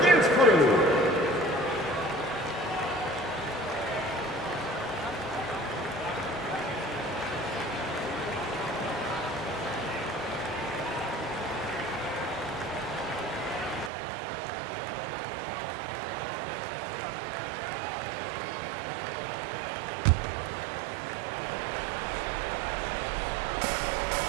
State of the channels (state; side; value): drops out; left; at 13.9 s